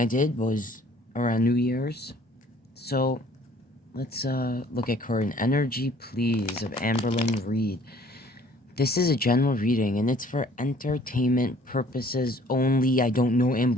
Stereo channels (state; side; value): normal; both; correlation 0.56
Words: did was around New Year's. So let's look at current energy, please, of Amberlynn Reid. This is a general reading, and it's for entertainment purposes only. I don't know